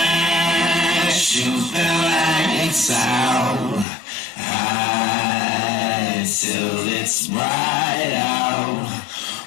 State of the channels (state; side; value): drops out; right; at 3.9 s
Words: Shoot the lights out. High till it's bright out.